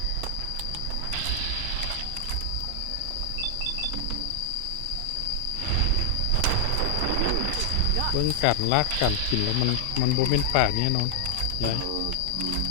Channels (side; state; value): both; different; correlation 0.00